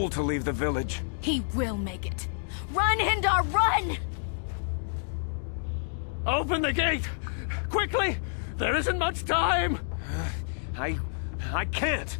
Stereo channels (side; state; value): right; silent; digital silence